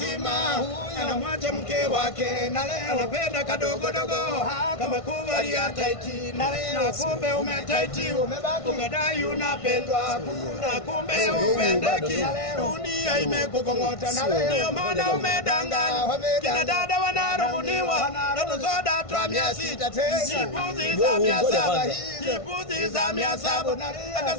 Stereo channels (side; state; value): right; late; 1.5 ms